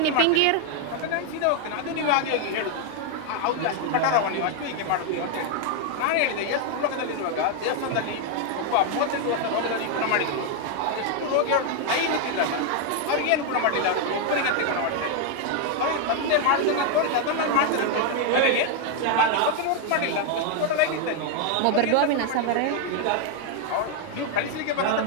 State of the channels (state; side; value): different; both; correlation 0.00